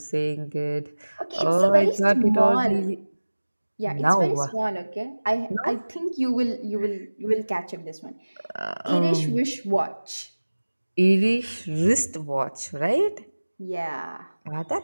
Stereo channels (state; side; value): inverted; both; correlation -1.00